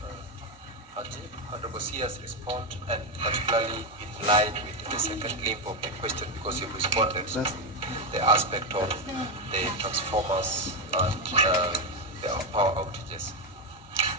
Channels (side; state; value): both; normal; correlation 0.08